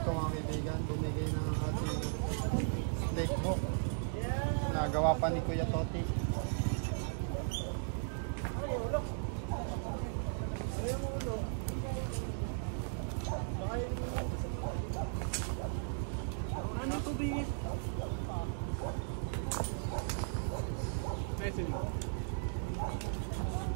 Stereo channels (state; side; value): silent; left; digital silence